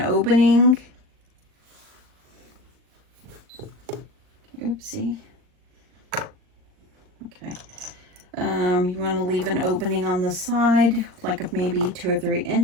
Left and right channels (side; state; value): left; late; 39 ms